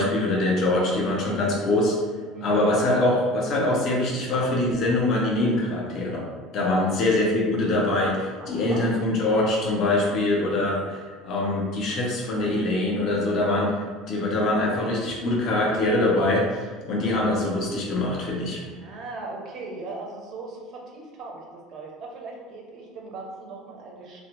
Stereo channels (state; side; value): normal; both; correlation 0.38